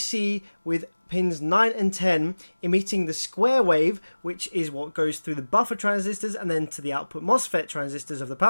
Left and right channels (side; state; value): both; inverted; correlation -1.00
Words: with pins 9 and 10 emitting the square wave, which is what goes through the buffer transistors and then to the output MOSFET transistors of the